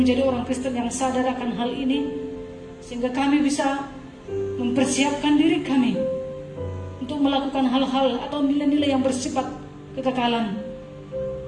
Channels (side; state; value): both; identical; correlation 1.00